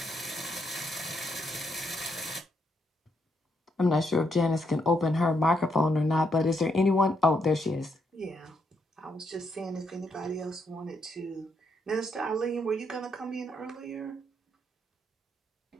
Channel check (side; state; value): both; normal; correlation 0.77